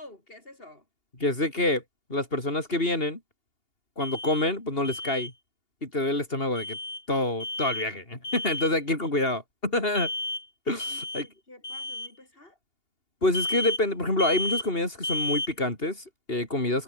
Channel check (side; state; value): right; late; 2.8 ms